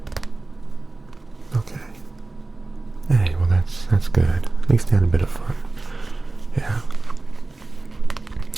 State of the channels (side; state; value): left; quieter; 3.2 dB